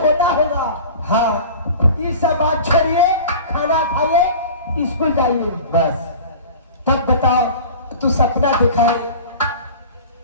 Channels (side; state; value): both; inverted; correlation -0.38